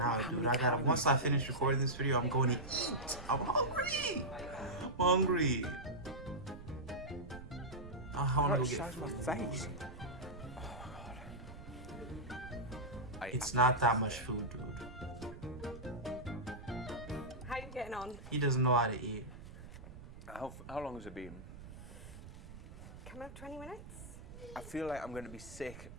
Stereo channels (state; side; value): noise; right; rumble, 14 dB below the sound